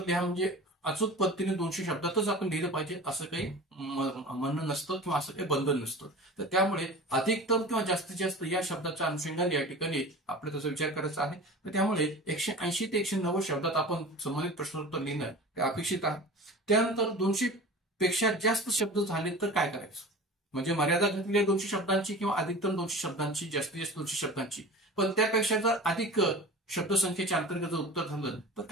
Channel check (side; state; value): both; normal; correlation 0.36